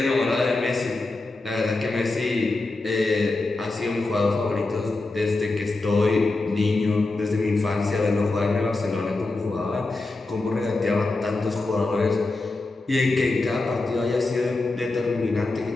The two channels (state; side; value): quieter; right; 3.2 dB